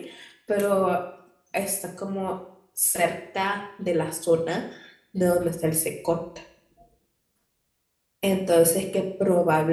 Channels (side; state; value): both; identical; correlation 1.00